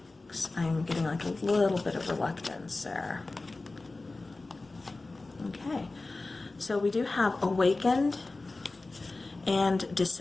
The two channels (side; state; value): right; quieter; 3.3 dB